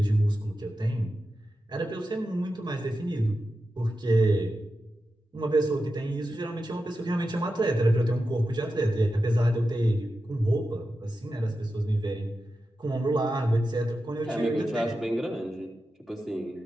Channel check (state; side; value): normal; both; correlation 0.91